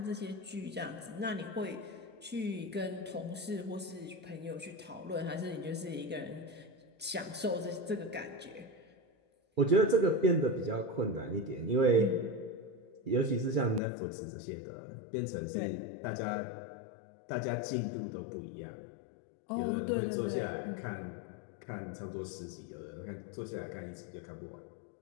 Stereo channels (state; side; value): drops out; right; at 13.8 s